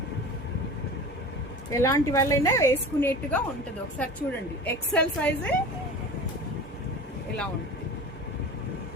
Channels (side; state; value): both; normal; correlation 0.35